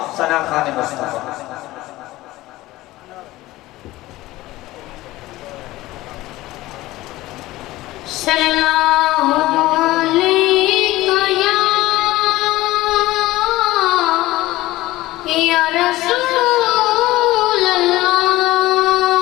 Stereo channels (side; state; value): right; quieter; 17.6 dB